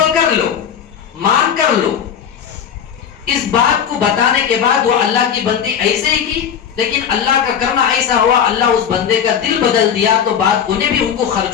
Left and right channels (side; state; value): right; quieter; 8.1 dB